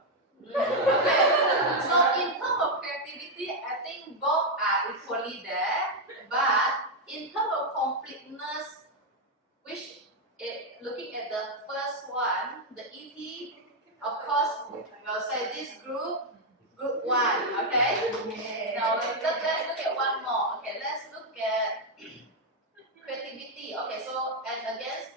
Okay. So in terms of creativity, I think both are equally there. But in terms of completeness, looking at the first one, the ET, of course, we'll say this group 1, okay? Now let's look at one more. Okay, let's look at creativity. Okay, so and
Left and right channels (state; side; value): normal; both; correlation 0.01